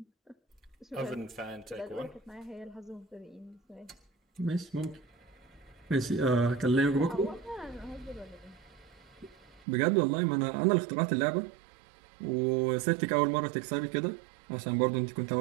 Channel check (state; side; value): drops out; left; at 9.7 s